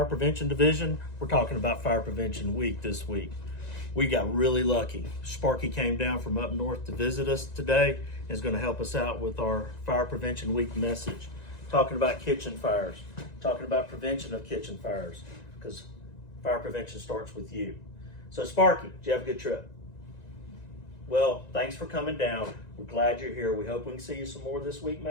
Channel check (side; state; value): right; late; 1.9 ms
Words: Prevention Division. We're talking about Fire Prevention Week this week. We got really lucky. Sparky came down from up north to visit us today and is going to help us out with our Fire Prevention Week message. Talking about kitchen fires, talking about prevention of kitchen fires, because fire prevention starts with you. So Sparky, did you have a good trip? Well, thanks for coming down. We're glad you're here. We hope we can see you some more this week,